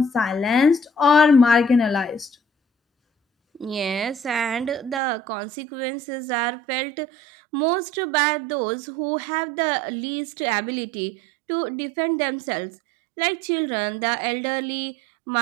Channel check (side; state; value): left; drops out; at 5.0 s